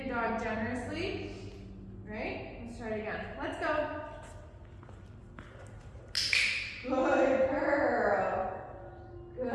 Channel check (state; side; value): identical; both; correlation 1.00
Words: dog generously. Right? Let's try it again. Let's go. Good girl.